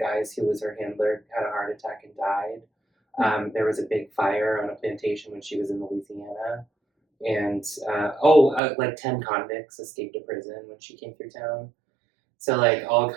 who was her handler had a heart attack and died. There was a big fire on a plantation when she was in Louisiana. And, like 10 convicts escaped to prison when she came through town. So, like, all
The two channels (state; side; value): drops out; left; at 8.6 s